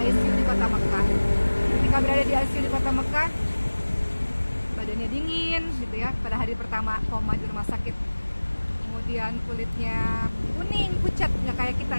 di Kota Mekah. Ketika berada di ICU di Kota Mekah, badannya dingin gitu ya pada hari pertama koma di rumah sakit. Kemudian kulitnya kuning, pucat, nggak kayak kita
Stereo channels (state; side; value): inverted; both; correlation -1.00